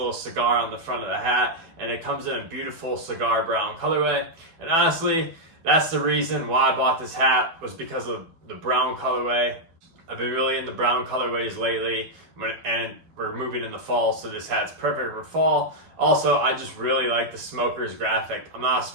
cigar on the front of the hat, and it comes in a beautiful cigar brown colorway. And honestly, that's the reason why I bought this hat, was because of the brown colorway. I've been really into brown colorways lately, and we're moving into fall, so this hat's perfect for fall. Also, I just really like the Smokers graphic. I'm not a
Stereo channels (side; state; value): left; late; 12 ms